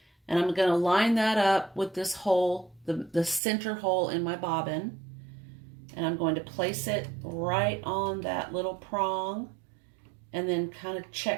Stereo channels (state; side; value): drops out; left; at 3.4 s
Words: and I'm going to line that up with this hole, the center hole in my bobbin, and I'm going to place it right on that little prong, and then kind of